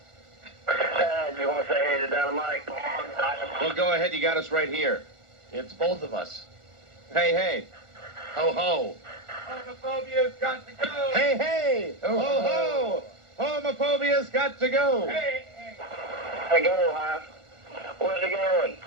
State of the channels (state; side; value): late; left; 1.4 ms